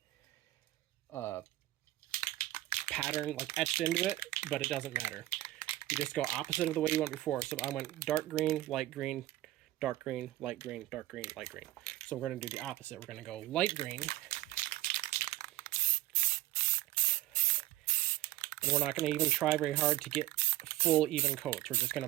pattern like etched into it, but it doesn't matter. You just go opposite of the way you went before. So I went dark green, light green, dark green, light green, dark green, light green. So we're going to do the opposite. We're going to go light green. And we're not going to even try very hard to get full even coats. We're just going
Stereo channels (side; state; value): left; quieter; 16.2 dB